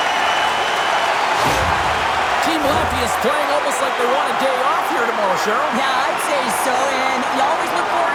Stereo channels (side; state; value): both; identical; correlation 1.00